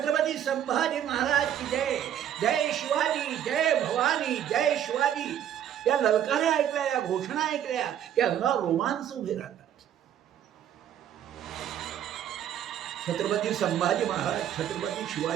संभाजी महाराज की जय, जय शिवाजी, जय भवानी, जय शिवाजी. या ललकाऱ्या ऐकल्या, या घोषणा ऐकल्या की अंगावर रोमांच उभे राहतात. छत्रपती संभाजी महाराज, छत्रपती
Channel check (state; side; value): quieter; left; 10.3 dB